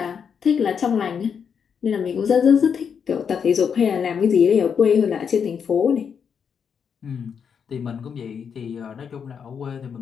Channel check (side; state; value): right; quieter; 7.0 dB